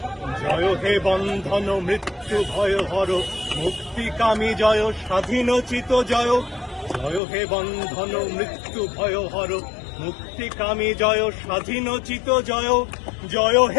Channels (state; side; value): drops out; right; at 7.2 s